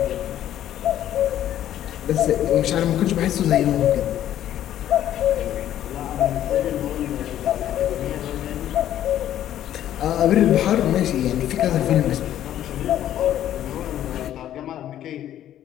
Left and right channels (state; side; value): quieter; right; 11.7 dB